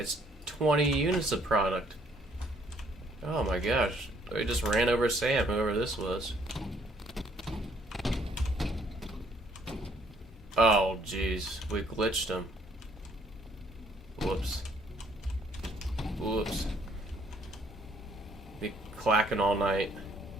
20 units of product. Oh my gosh. We just ran over Sam, whoever this was. Oh jeez. We glitched him. Whoops. Whoops. Be clacking all night.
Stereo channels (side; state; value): both; normal; correlation 0.64